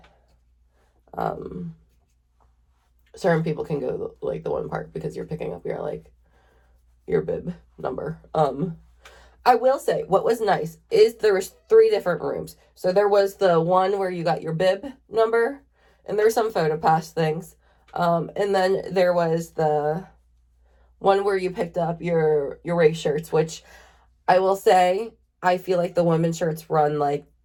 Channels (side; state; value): both; identical; correlation 1.00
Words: certain people can go, like, the one part because you're picking up your, like, your bib number. I will say what was nice is there was 3 different rooms. So there was the one where you got your bib number, and there's some photo pass things. And then there was the one where you picked up your race shirts, which I will say, I feel like the women's shirts run like